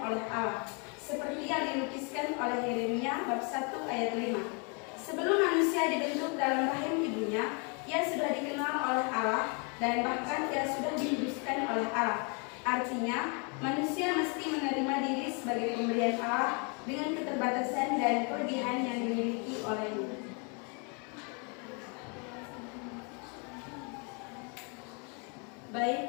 Allah, seperti yang dilukiskan oleh Yeremia bab 1 ayat 5. Sebelum manusia dibentuk dalam rahim ibunya, ia sudah dikenal oleh Allah dan bahkan ia sudah dihidupkan oleh Allah. Artinya, manusia mesti menerima diri sebagai pemberian Allah dengan keterbatasan dan kelebihan yang dimiliki olehnya.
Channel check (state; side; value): quieter; right; 35.2 dB